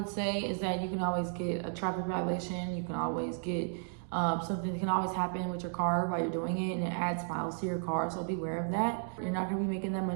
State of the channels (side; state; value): left; silent; 55 dB below the other